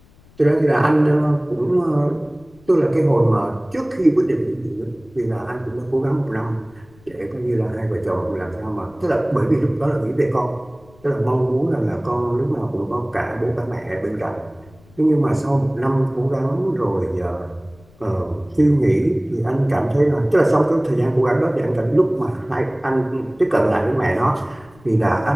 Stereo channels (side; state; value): left; noise; rumble, 27 dB below the sound